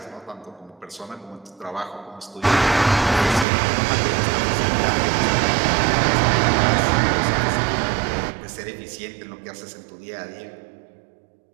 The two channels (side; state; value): left; drops out; at 3.5 s